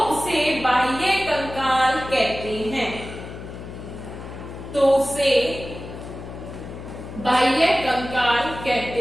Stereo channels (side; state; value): left; noise; hum, 11 dB below the sound